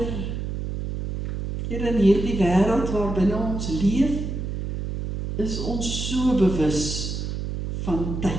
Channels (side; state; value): right; noise; hum, 4 dB below the sound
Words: Here, in hierdie wêreld waarbinne ons leef, is ons so bewus van